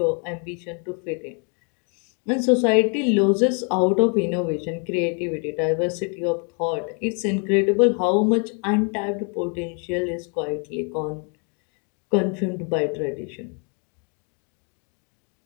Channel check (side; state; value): right; quieter; 38.1 dB